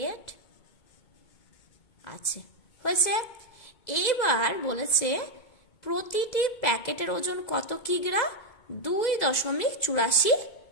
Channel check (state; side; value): late; right; 2.2 ms